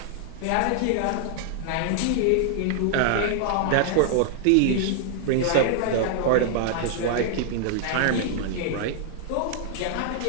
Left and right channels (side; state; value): both; different; correlation -0.01